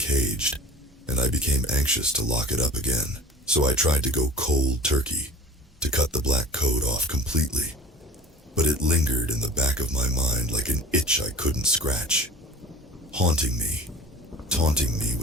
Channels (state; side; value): normal; both; correlation 0.42